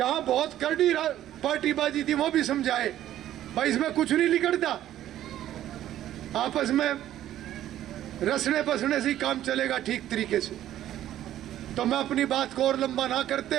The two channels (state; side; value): quieter; left; 12.5 dB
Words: बहुत करड़ी पार्टीबाजी थी वो भी समझाए भाई इसमें कुछ नहीं निकलता, आपस में रसने बसने से ही काम चलेगा ठीक तरीके से। तो मैं अपनी बात को और लंबा ना करते